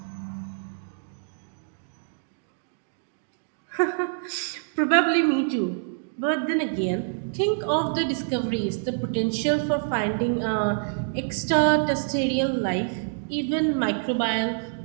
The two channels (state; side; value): silent; left; digital silence